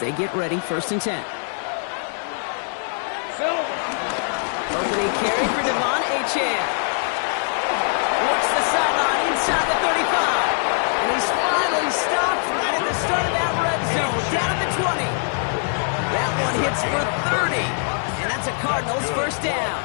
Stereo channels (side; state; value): right; silent; 63 dB below the other